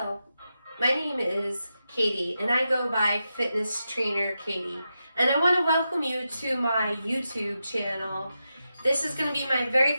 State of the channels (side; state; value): both; inverted; correlation -0.89